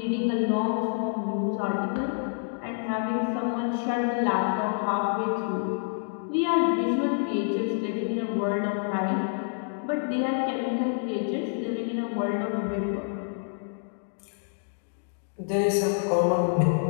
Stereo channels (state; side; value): silent; right; digital silence